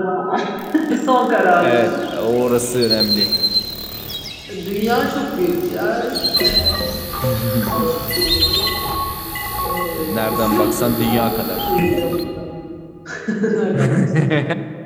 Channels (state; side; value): identical; both; correlation 1.00